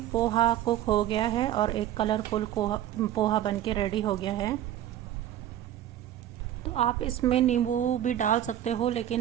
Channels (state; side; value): quieter; left; 12.0 dB